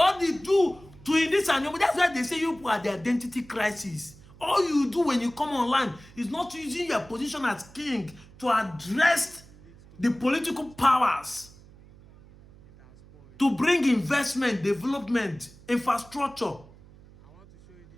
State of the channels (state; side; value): noise; right; hum, 23 dB below the sound